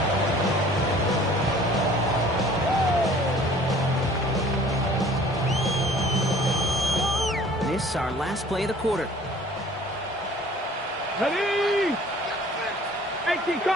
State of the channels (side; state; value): both; normal; correlation 0.51